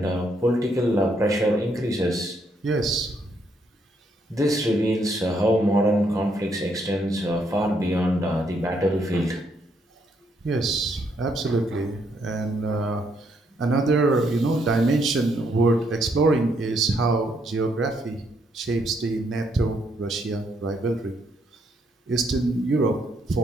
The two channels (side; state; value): both; normal; correlation 0.73